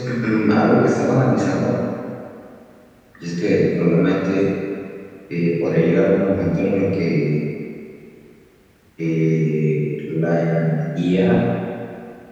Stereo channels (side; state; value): both; identical; correlation 1.00